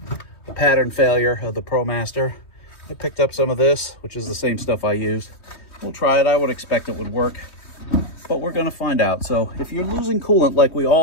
pattern failure of the Promaster. I picked up some of this, which is the same stuff I used. We'll try it. I would expect it would work, but we're going to find out. So if you're losing coolant like we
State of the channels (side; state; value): right; late; 3.2 ms